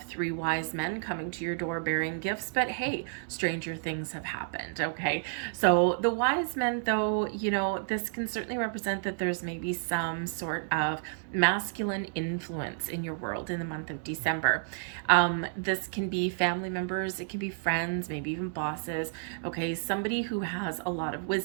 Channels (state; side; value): silent; left; digital silence